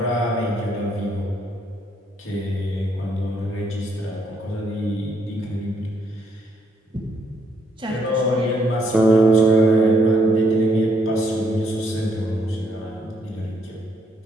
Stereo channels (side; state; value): both; normal; correlation 0.72